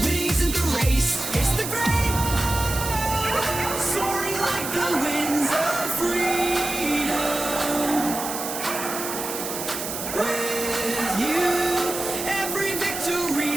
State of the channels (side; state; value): right; noise; hiss, 6 dB below the sound